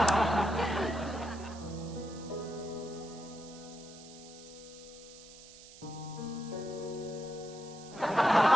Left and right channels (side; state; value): right; noise; hiss, 18 dB below the sound